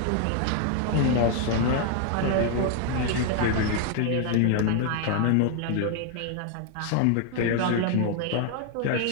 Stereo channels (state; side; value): different; both; correlation 0.00